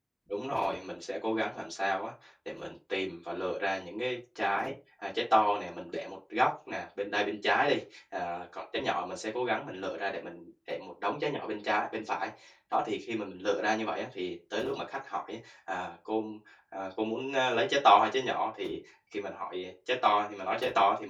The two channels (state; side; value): identical; both; correlation 1.00